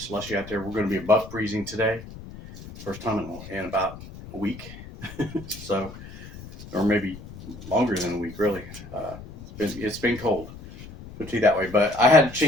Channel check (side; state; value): left; noise; rumble, 15 dB below the sound